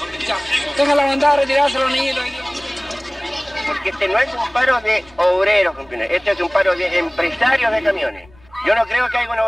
Tenga la bondad de retirarse los niños. Porque este no es un paro de obreros, compañeros. Este es un paro de empresarios de camiones. Yo no creo que haya un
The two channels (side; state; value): left; noise; rumble, 28 dB below the sound